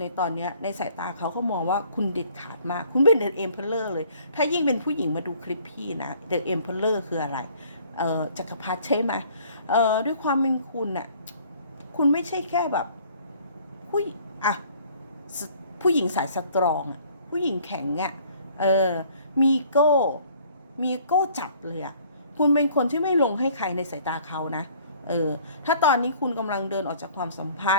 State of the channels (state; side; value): inverted; both; correlation -0.56